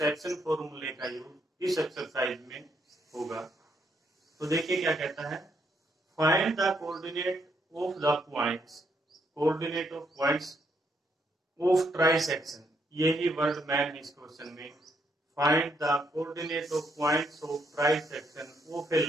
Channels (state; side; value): normal; both; correlation 0.75